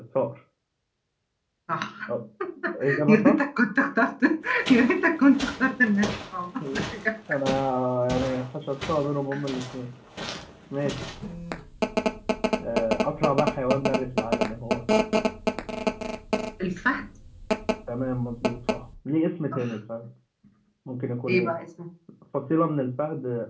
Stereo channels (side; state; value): both; identical; correlation 1.00